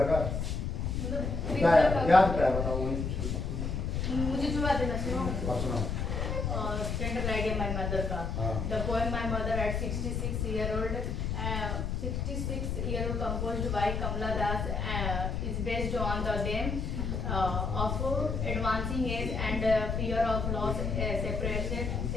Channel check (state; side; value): noise; left; rumble, 1 dB below the sound